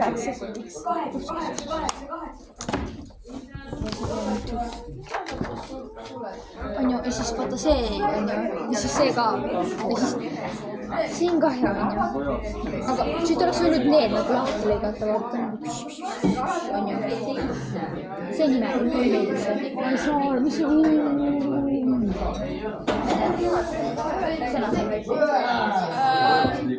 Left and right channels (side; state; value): both; identical; correlation 1.00